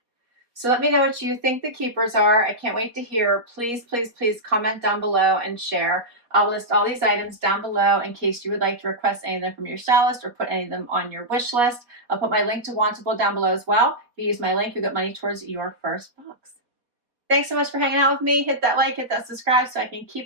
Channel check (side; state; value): left; late; 4.2 ms